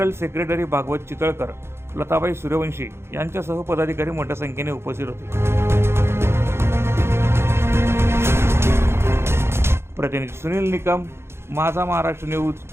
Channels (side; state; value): left; late; 0.12 ms